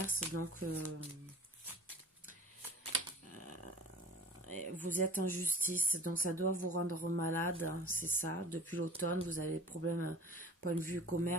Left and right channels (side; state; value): both; normal; correlation 0.42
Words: Donc, vous êtes en justice. Donc, ça doit vous rendre malade. C'est ça. Depuis l'automne, vous avez des problèmes, point de vue